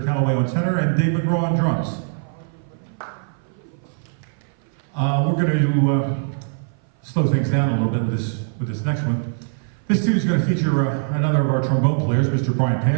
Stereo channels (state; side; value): silent; left; 58 dB below the other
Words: Calloway on tenor, and Dave McGraw on drums. We're going to slow things down a little bit with this next one. This tune is going to feature another of our trombone players, Mr. Brian